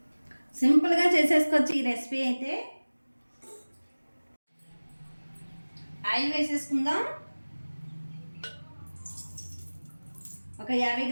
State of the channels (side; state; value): both; inverted; correlation -1.00